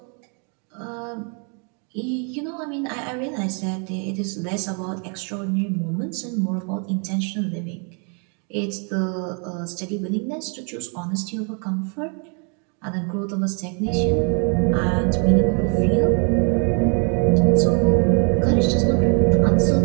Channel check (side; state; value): left; quieter; 37.9 dB